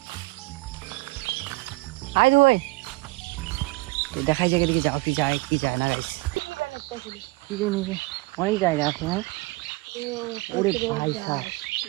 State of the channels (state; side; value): quieter; left; 23.1 dB